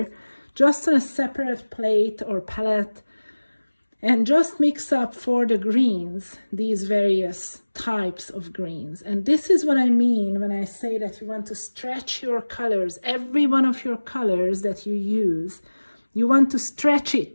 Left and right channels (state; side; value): inverted; both; correlation -1.00